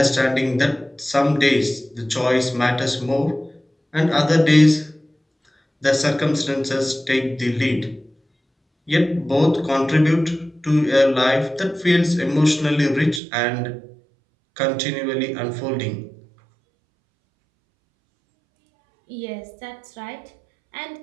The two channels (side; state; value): left; drops out; at 13.2 s